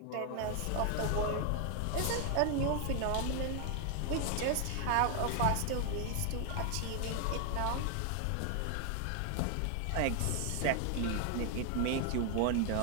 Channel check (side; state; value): both; different; correlation 0.00